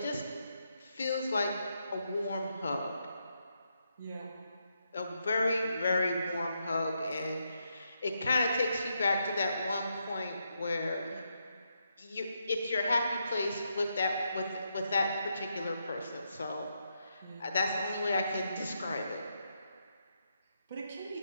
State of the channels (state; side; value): inverted; both; correlation -0.81